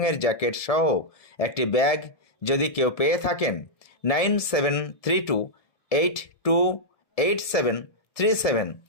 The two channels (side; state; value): right; late; 1.7 ms